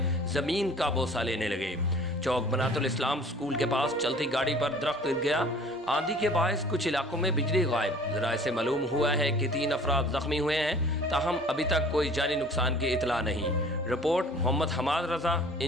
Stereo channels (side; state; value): both; normal; correlation 0.48